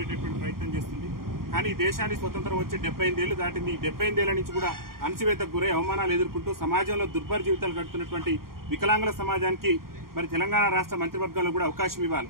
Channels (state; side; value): late; left; 0.92 ms